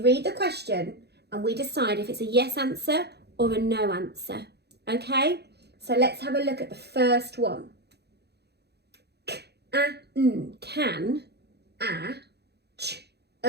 the question and we decide if it's a yes answer or a no answer. Okay, so let's have a look at the first one. Can,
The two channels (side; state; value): left; late; 0.48 ms